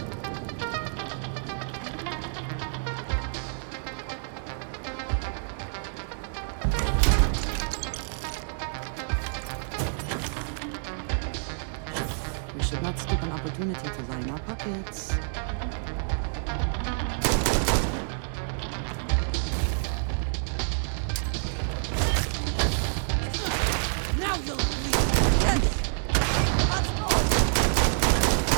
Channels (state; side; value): silent; left; digital silence